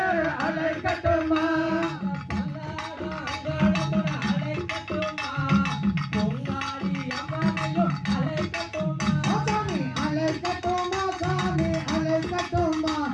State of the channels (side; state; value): both; identical; correlation 1.00